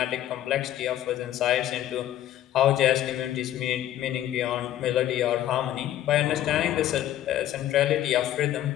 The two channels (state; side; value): quieter; right; 12.5 dB